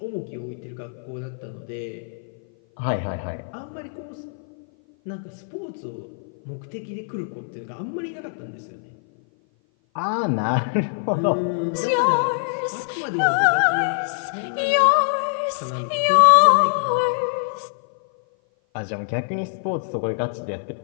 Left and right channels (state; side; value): silent; right; 56 dB below the other